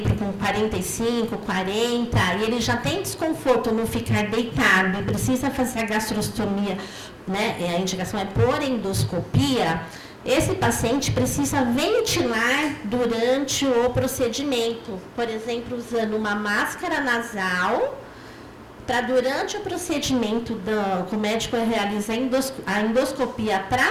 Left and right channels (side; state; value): both; identical; correlation 1.00